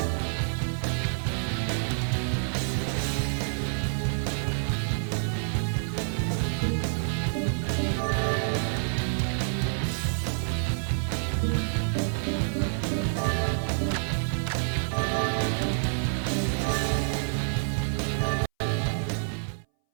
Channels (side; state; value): left; silent; 59 dB below the other